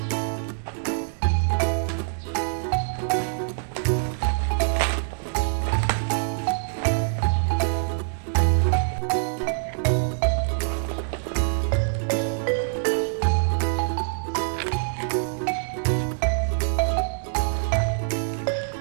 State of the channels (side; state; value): left; silent; digital silence